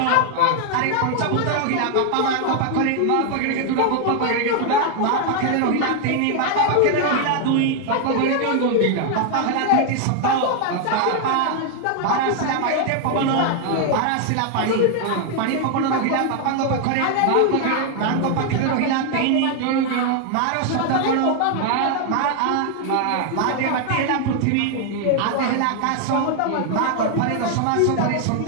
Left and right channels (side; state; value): both; different; correlation 0.00